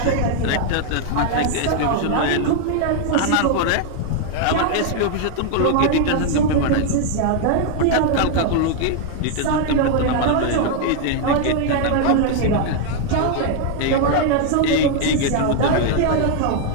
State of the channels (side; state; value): both; different; correlation 0.00